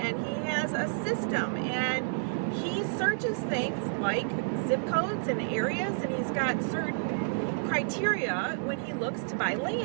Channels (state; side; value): silent; left; digital silence